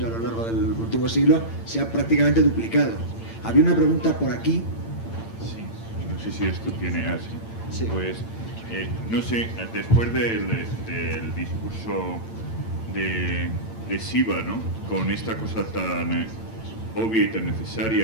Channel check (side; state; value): right; late; 8.9 ms